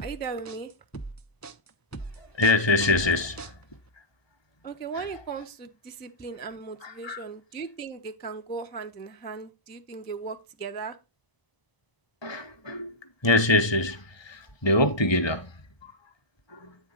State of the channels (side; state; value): right; late; 1.2 ms